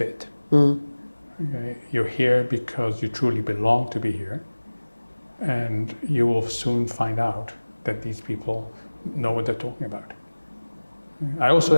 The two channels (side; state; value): both; inverted; correlation -1.00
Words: Okay. You're here because you truly belong to be here, and you will soon find out that these people know what they're talking about. I also